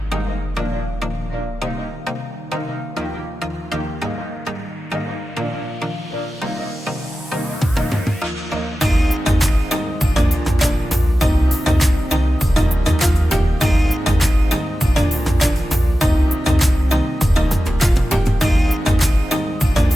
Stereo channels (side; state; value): both; normal; correlation 0.93